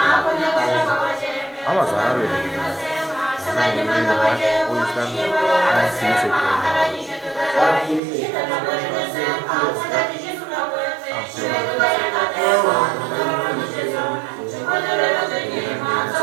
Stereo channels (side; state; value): left; drops out; at 8.0 s